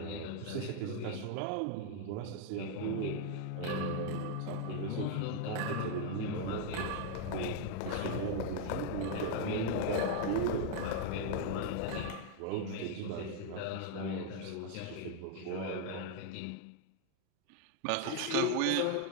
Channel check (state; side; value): different; both; correlation 0.00